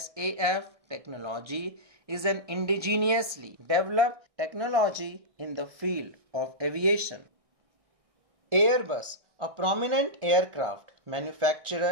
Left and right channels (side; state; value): left; late; 1.6 ms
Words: technology is an indigenously developed technology in the field of aviation. Airbus, a prominent aircraft